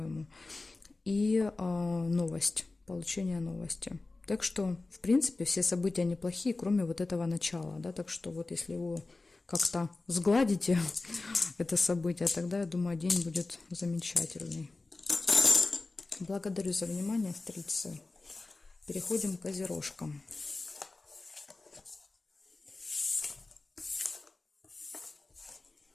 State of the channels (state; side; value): quieter; right; 3.4 dB